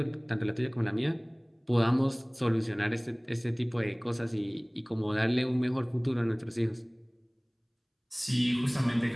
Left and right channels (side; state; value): both; identical; correlation 1.00